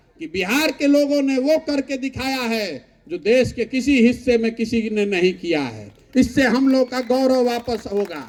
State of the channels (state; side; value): identical; both; correlation 1.00